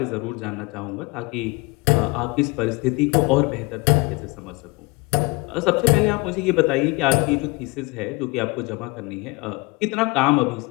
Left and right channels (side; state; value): right; quieter; 25.6 dB